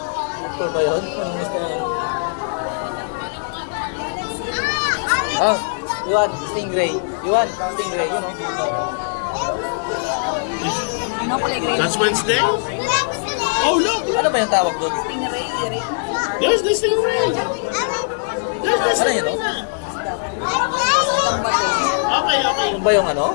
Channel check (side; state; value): right; silent; 65 dB below the other